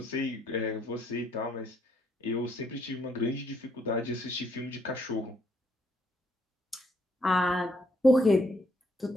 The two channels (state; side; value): normal; both; correlation 0.71